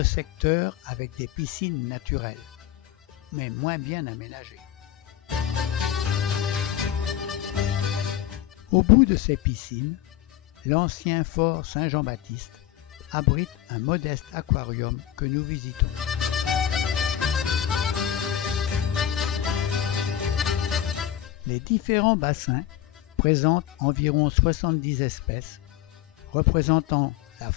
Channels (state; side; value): quieter; right; 11.5 dB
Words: secteur avec des piscines naturelles, mais moins bien aménagées. Au bout de ces piscines, l'ancien fort Saint-Jean-Baptiste abrite un modeste aquarium que nous visitons. Les différents bassins présentent environ 70 espèces, représentant la